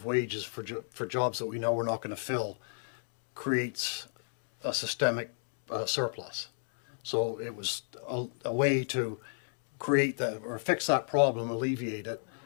wages for jobs that we know we're not going to fill creates a systemic surplus. So it was a way to create that, or fix that problem, alleviate it,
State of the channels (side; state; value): right; silent; 57 dB below the other